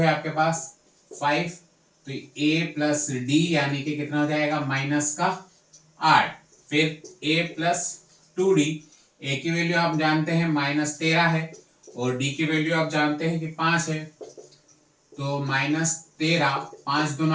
है आपके पास 5। तो ए प्लस डी यानी कि कितना हो जाएगा? -8। फिर ए प्लस 2d। ए की वैल्यू आप जानते हैं -13 है और डी की वैल्यू आप जानते हैं कि 5 है। तो -13, 5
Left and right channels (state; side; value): identical; both; correlation 1.00